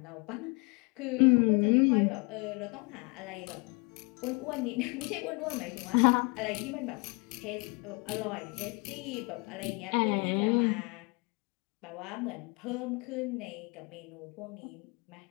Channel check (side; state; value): right; quieter; 31.2 dB